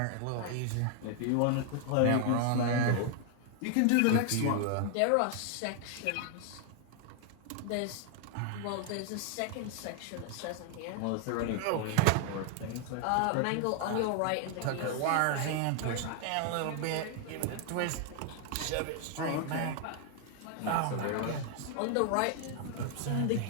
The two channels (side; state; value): both; different; correlation 0.00